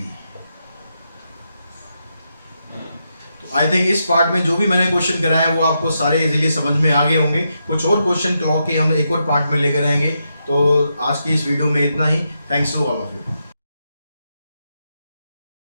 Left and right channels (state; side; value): inverted; both; correlation -0.84